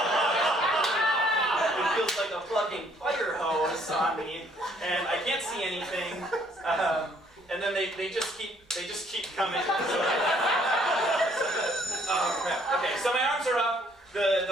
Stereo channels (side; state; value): both; normal; correlation 0.64